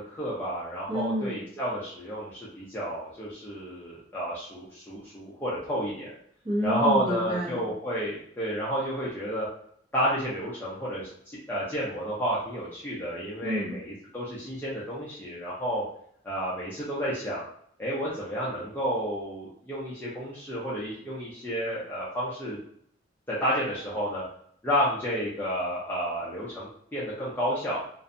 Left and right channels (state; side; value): normal; both; correlation 0.24